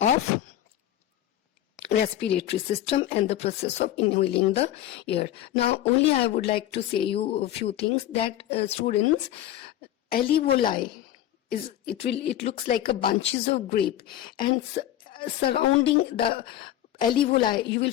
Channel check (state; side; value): quieter; right; 12.7 dB